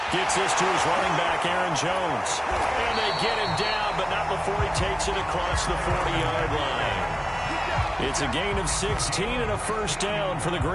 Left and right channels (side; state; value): both; identical; correlation 1.00